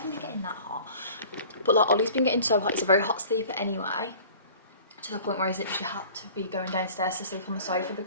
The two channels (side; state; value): both; inverted; correlation -0.46